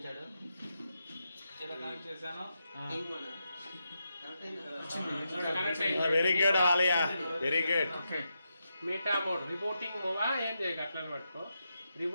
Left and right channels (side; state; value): both; inverted; correlation -0.86